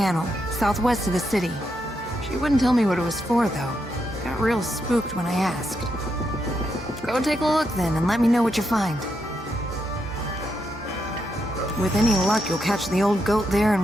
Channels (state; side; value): normal; both; correlation 0.82